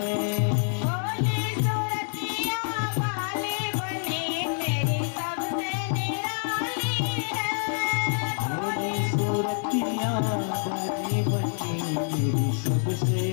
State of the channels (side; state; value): right; silent; 60 dB below the other